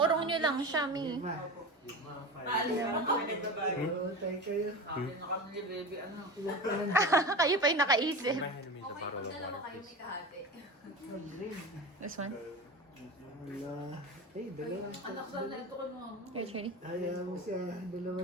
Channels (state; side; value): normal; both; correlation 0.28